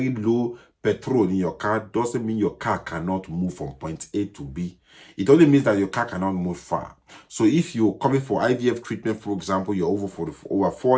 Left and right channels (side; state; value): both; identical; correlation 1.00